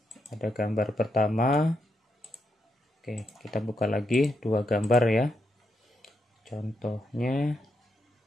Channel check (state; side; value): normal; both; correlation 0.81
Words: ada gambar pertama. Oke, kita buka lagi dua gambar ya. Contohnya